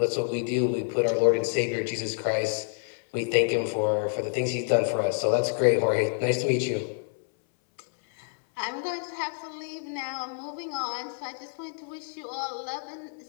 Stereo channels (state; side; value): silent; right; 59 dB below the other